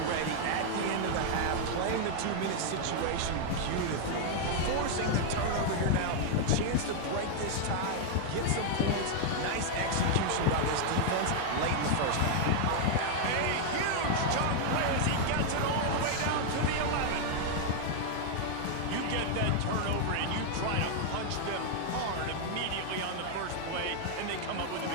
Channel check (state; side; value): different; both; correlation 0.00